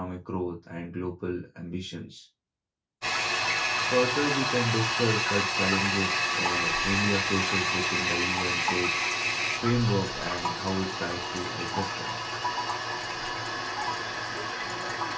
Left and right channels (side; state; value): both; identical; correlation 1.00